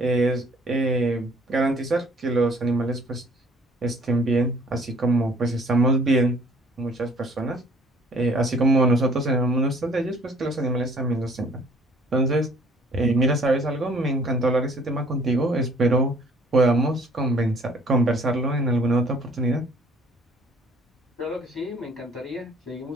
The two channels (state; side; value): normal; both; correlation 0.57